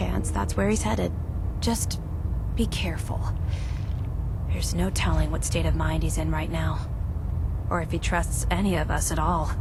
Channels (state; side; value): identical; both; correlation 1.00